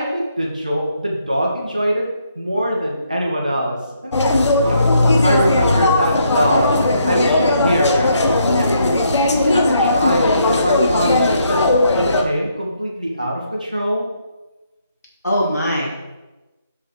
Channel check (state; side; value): inverted; both; correlation -0.73